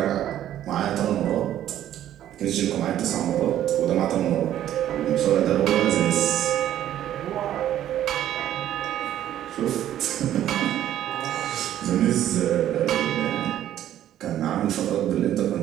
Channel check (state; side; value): quieter; left; 11.8 dB